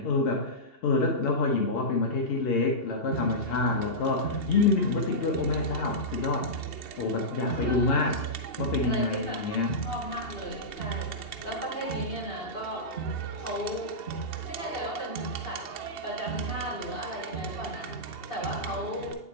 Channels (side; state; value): right; late; 2.8 ms